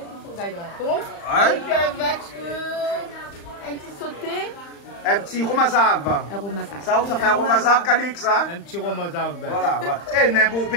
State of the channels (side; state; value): right; late; 35 ms